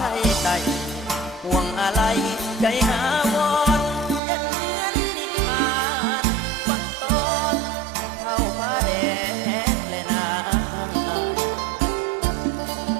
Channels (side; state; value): left; drops out; at 4.2 s